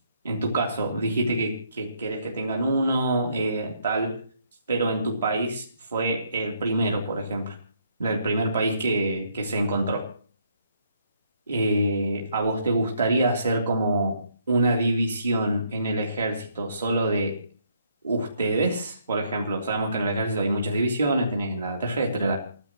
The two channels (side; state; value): both; inverted; correlation -0.70